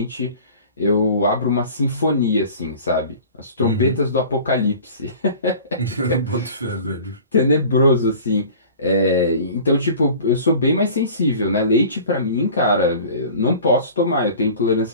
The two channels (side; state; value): both; inverted; correlation -0.43